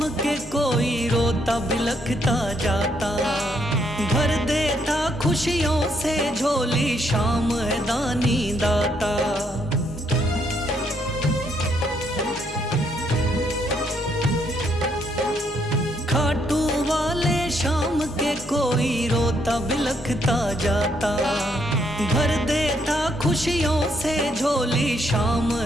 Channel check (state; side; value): normal; both; correlation 0.73